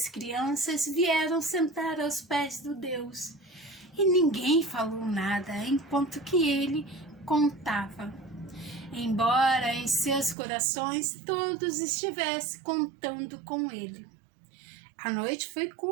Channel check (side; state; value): left; drops out; at 10.4 s